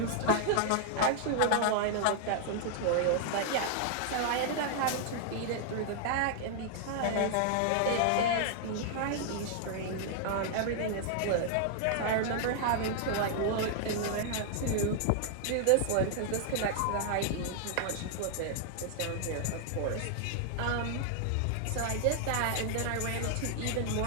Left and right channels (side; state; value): both; different; correlation 0.00